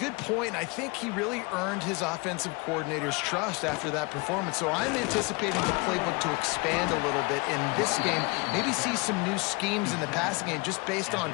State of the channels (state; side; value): quieter; right; 27.6 dB